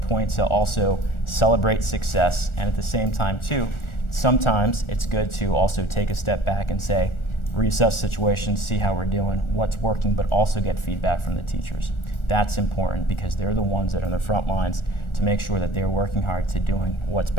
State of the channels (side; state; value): right; late; 1.4 ms